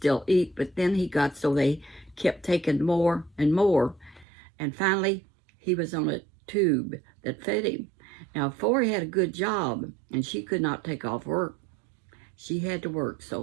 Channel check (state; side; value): drops out; left; at 4.2 s